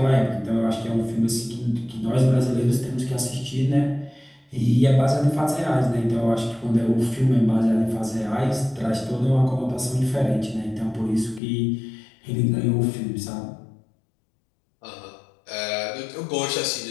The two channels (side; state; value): right; drops out; at 11.4 s